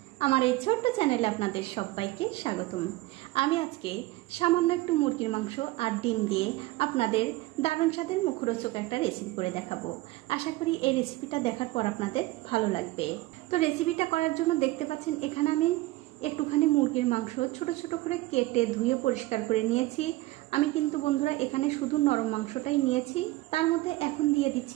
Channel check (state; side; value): quieter; left; 19.1 dB